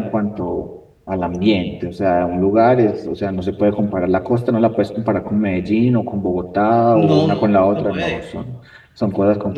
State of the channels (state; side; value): identical; both; correlation 1.00